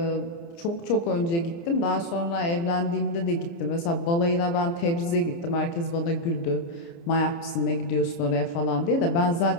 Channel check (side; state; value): right; late; 29 ms